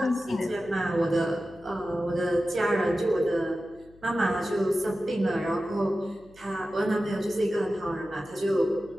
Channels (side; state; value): left; noise; hum, 26 dB below the sound